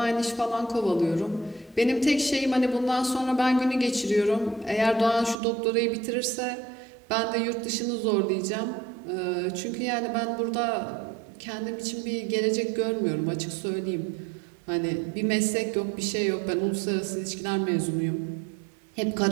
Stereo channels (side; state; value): left; drops out; at 5.4 s